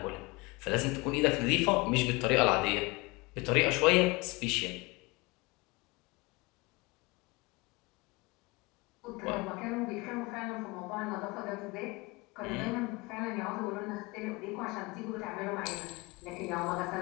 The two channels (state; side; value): quieter; right; 25.2 dB